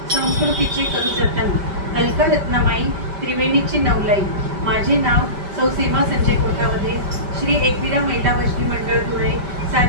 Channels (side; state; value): left; late; 5.1 ms